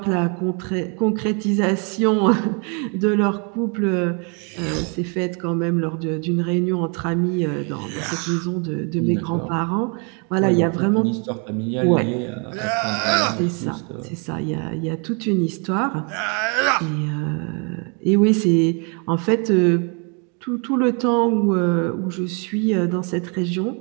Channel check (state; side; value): quieter; left; 36.2 dB